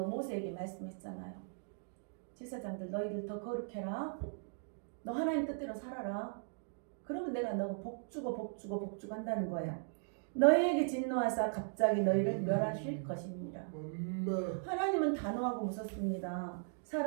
말씀했잖아요. 제사장들 너희들 더 거룩해라. 너 하나님 뜻대로 살아라. 그러면 내가 너 복주고 한다는 거예요. 너희에게 진노하사 갑자기 너희를 멸하실 것입니다. 하나님은 단호하고 무섭습니다.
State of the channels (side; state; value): left; silent; digital silence